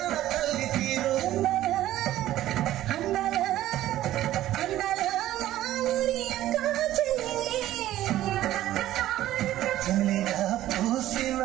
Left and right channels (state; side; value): quieter; left; 13.9 dB